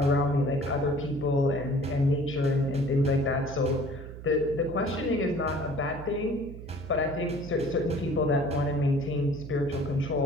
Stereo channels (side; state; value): right; noise; hum, 12 dB below the sound